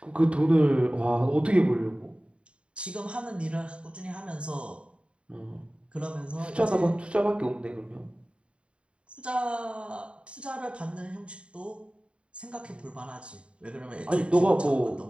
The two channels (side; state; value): left; late; 0.058 ms